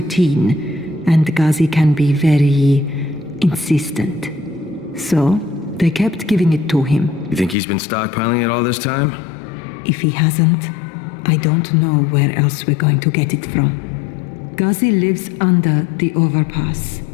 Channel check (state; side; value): drops out; right; at 7.6 s